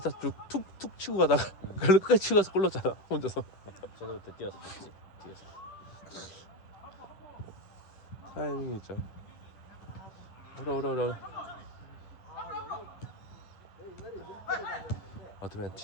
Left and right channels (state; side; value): late; right; 10 ms